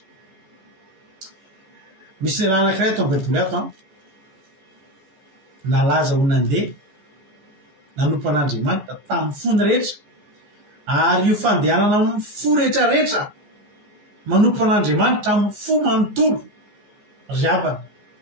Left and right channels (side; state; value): left; late; 14 ms